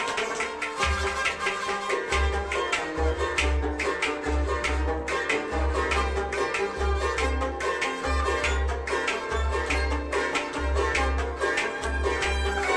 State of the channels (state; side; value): identical; both; correlation 1.00